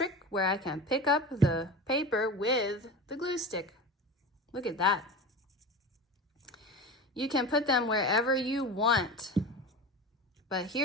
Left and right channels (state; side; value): normal; both; correlation 0.30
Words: where I can pick up the paper with the glue stick. Look at that. You can put them wherever you want. But